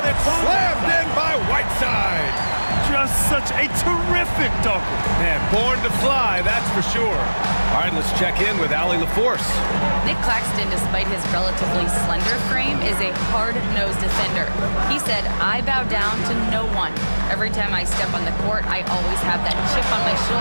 it's slammed in by Whiteside. Just such a terrific dunker. Man, born to fly, that's for sure. All right, let's check in with Allie LaForce. Nick Claxton, despite his relatively slender frame, is a hard-nosed defender. He said, "I bow down to no one. Every time I step on the court, I always have that chip on my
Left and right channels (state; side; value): inverted; both; correlation -1.00